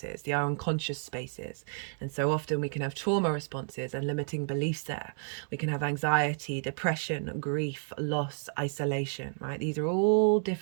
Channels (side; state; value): left; silent; 57 dB below the other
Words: the unconscious spaces. And so often we can have trauma responses and limiting beliefs there. We can have anxiety, depression, grief, loss, isolation, right? These are all